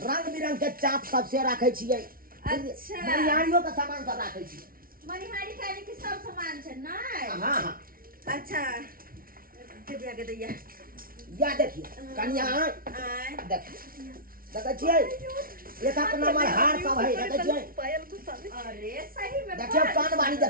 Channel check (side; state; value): left; late; 0.43 ms